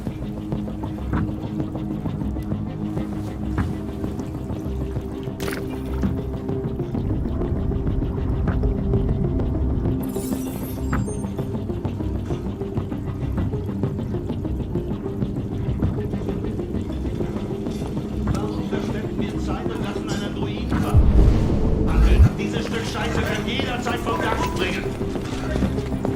Warum verschwenden wir Zeit und lassen einen Druiden warten? Handeln, dieses Stück Scheiße kann jederzeit vom Dach springen.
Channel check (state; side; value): identical; both; correlation 1.00